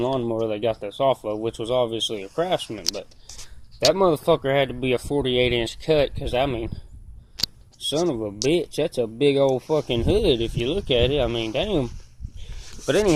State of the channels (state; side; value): identical; both; correlation 1.00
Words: they got this off of, which was obviously a Craftsman. But that motherfucker had to be a 48-inch cut, because, I mean, Son of a bitch, that's a big old fucking hood if you look at it. I mean, damn. But